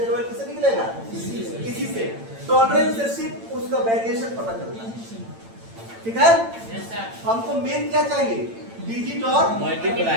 का वैल्यू किससे निकलेगा? इसी से। टॉलरेंस से सिर्फ उसका वेरिएशन पता चलता है। ठीक है, हमको मेन क्या चाहिए? डिजिट और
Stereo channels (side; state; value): left; late; 8.9 ms